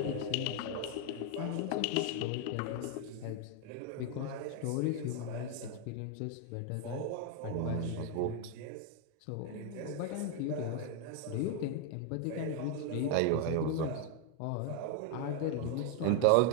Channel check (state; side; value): different; both; correlation 0.00